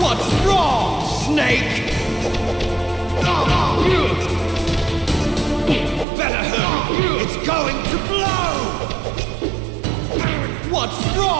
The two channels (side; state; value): left; drops out; at 6.1 s